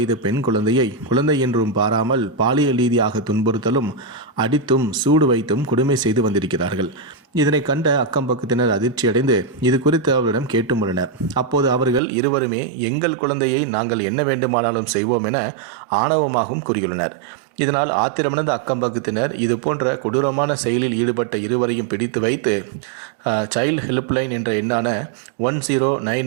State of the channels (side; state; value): left; drops out; at 12.0 s